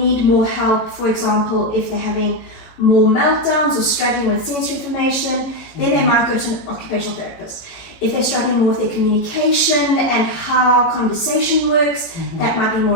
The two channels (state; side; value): late; right; 18 ms